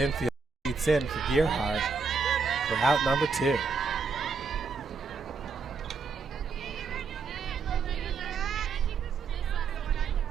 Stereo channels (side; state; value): left; quieter; 5.1 dB